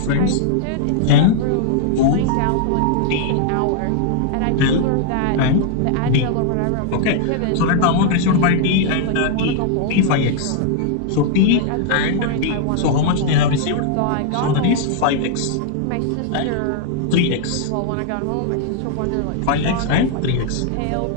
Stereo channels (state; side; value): different; both; correlation -0.01